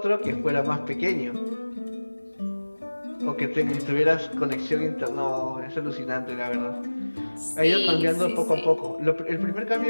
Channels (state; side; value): inverted; both; correlation -1.00